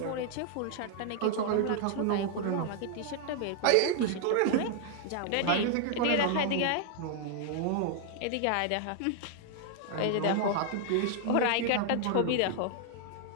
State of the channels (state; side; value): different; both; correlation 0.00